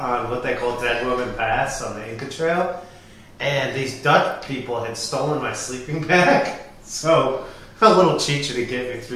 what they call Dead Woman Pass on the Inca Trail, and these Dutch people had stolen my sleeping bag. So a little chicha to get me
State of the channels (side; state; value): both; identical; correlation 1.00